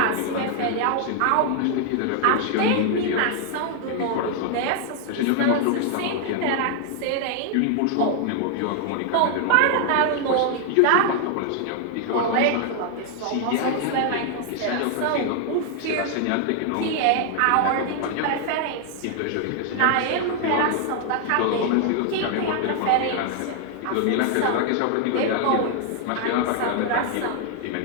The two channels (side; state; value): both; different; correlation 0.00